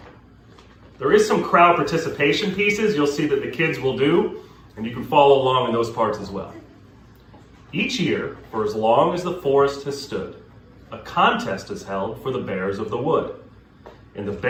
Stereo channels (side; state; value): both; identical; correlation 1.00